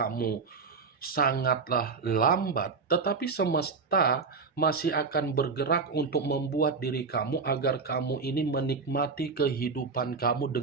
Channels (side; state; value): left; quieter; 4.8 dB